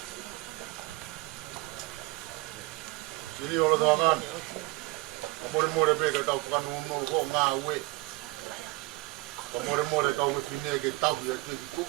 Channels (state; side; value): quieter; left; 23.2 dB